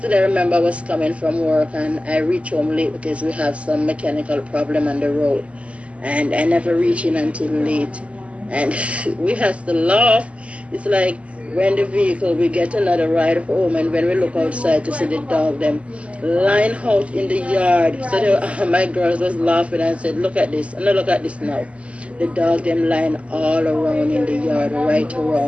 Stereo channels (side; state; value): left; late; 0.061 ms